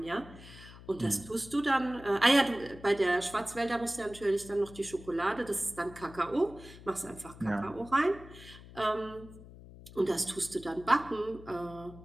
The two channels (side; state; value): left; noise; hum, 18 dB below the sound